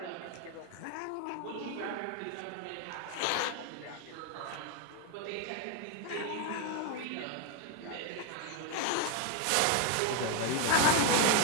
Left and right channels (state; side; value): different; both; correlation 0.01